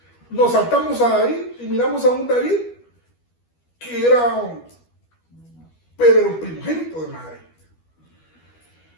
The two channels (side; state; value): right; late; 12 ms